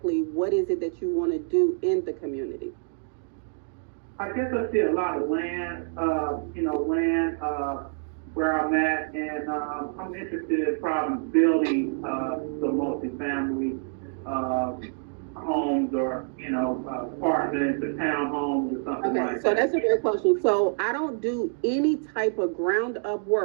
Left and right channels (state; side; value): silent; left; 60 dB below the other